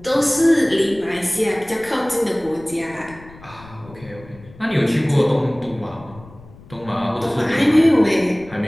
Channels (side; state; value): left; noise; rumble, 21 dB below the sound